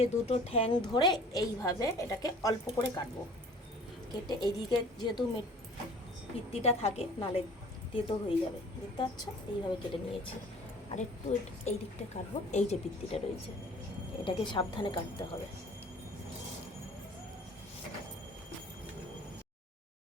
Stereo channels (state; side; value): normal; both; correlation 0.48